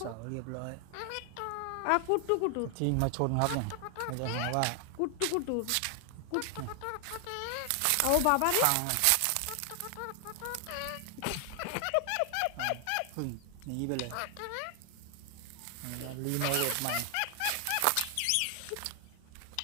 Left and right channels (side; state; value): both; different; correlation 0.00